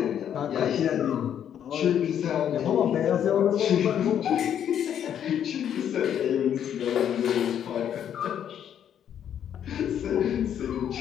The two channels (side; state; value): right; quieter; 9.4 dB